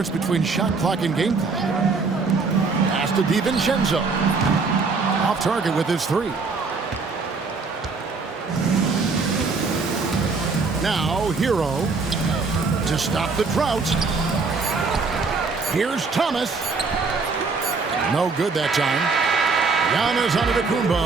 between shot clock and game clock. Pass to DiVincenzo. Off target with his three. Now Hero to stop the drought. Here's Thomas. No good that time. Giannis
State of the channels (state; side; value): quieter; left; 4.4 dB